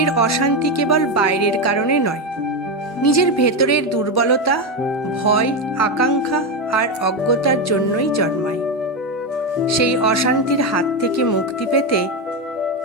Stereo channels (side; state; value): both; normal; correlation 0.11